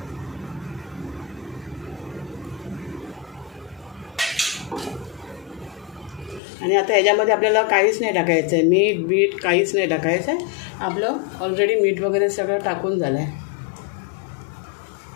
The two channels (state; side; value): drops out; right; at 6.4 s